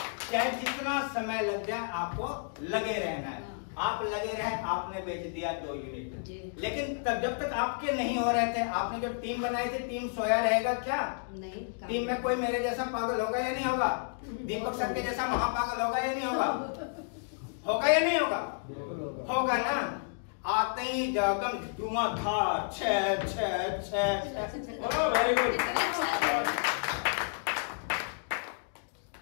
चाहे जितना समय लग जाए आपको लगे रहना है। आप लगे रहे, आपने बेच दिया 2 यूनिट, लेकिन तब जब तक आपके नहीं हो रहे थे, आपने जो टीम बनाई थी, टीम सोया रहेगा क्या? नहीं। टीम में कोई मेरे जैसा पागल होगा या नहीं होगा? दीपक सर के जैसा महापागल होगा या नहीं होगा? होगा या नहीं होगा? होगा ना। आते ही जगम धुआंधार, छह छह छह, वेरी गुड,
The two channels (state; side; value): silent; right; digital silence